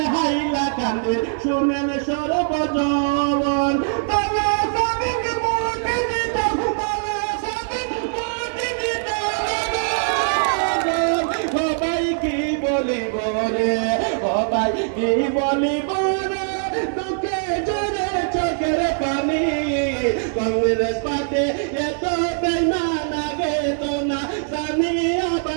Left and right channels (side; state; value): left; silent; 64 dB below the other